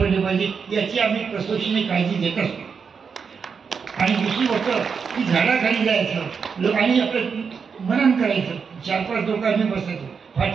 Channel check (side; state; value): left; quieter; 5.9 dB